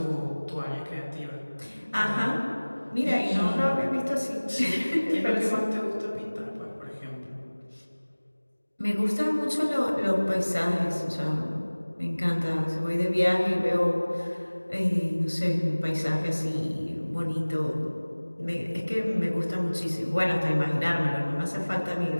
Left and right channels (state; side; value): inverted; both; correlation -1.00